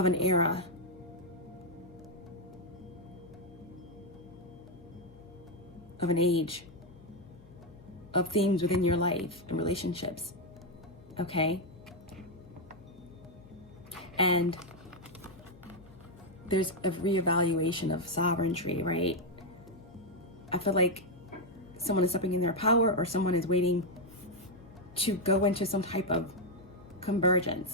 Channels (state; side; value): noise; left; hum, 23 dB below the sound